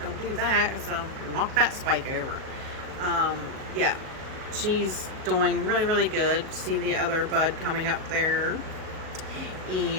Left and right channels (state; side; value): late; left; 37 ms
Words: do that, so knock that spike over. Yeah, she's doing really, really good. See the other bud coming up there,